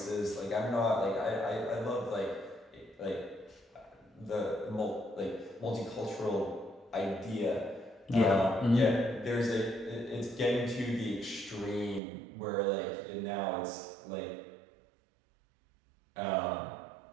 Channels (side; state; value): left; drops out; at 12.0 s